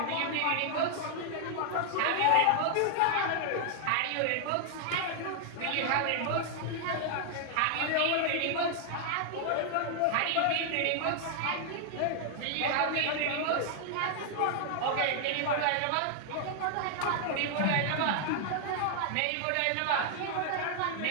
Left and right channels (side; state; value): both; different; correlation 0.00